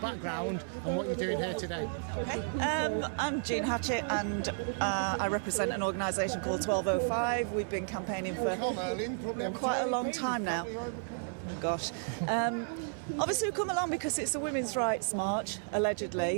and what you're doing here today? I'm Jean Hatchet and I represent an organisation called 1205. We've been campaigning for quite a long time now. Gosh. Obviously we've come along because it's a women's rights march,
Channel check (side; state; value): left; silent; 56 dB below the other